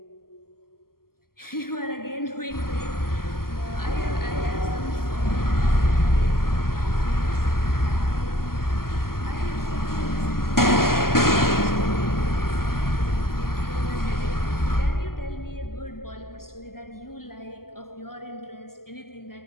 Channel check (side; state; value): right; late; 0.92 ms